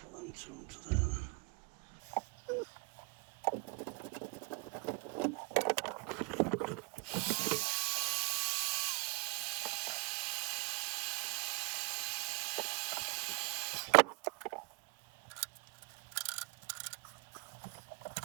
them two onto there then.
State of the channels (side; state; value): left; quieter; 31.0 dB